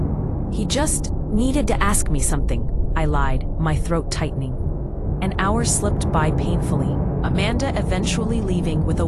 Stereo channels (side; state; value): both; identical; correlation 1.00